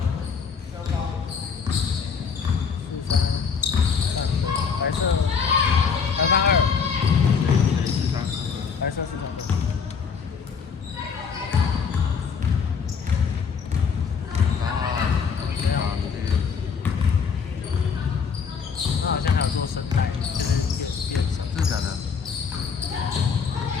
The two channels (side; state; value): right; quieter; 6.1 dB